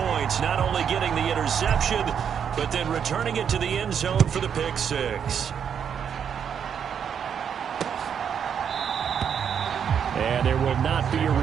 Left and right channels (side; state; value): left; quieter; 7.9 dB